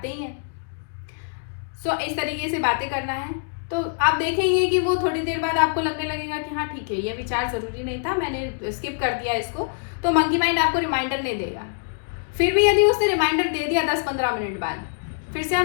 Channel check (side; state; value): right; silent; digital silence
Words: ही हैं। सो इस तरीके से बातें करना है, तो आप देखेंगे कि वो थोड़ी देर बाद आपको लगने लगेगा कि हाँ ठीक है, ये विचार ज़रूरी नहीं था, मैंने स्किप कर दिया इसको। तो मंकी माइंड आपको रिमाइंडर नहीं देगा। फिर भी यदि उसने रिमाइंडर दे दिया 10-15 मिनट बाद, फिर से